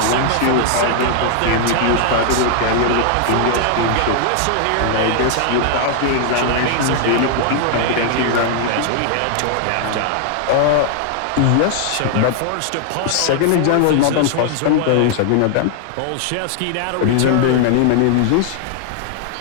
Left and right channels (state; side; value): different; both; correlation 0.00